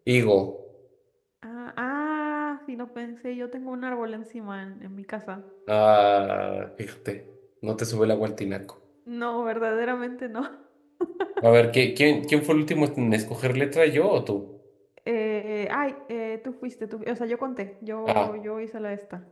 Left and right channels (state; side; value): identical; both; correlation 1.00